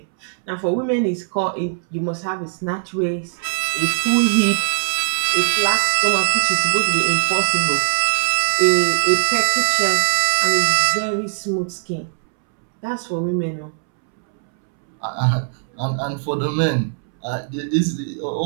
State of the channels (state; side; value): silent; left; 66 dB below the other